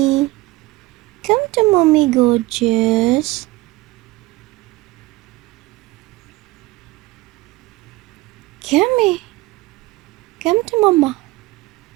Come to mommy, gorgeous. Come here. Come to mama.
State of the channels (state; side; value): quieter; left; 20.2 dB